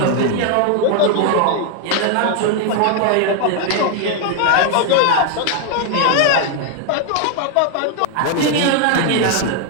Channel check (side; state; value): both; different; correlation 0.00